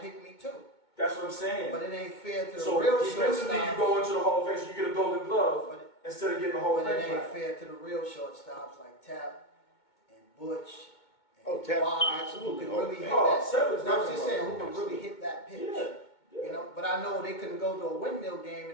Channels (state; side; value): late; right; 2.2 ms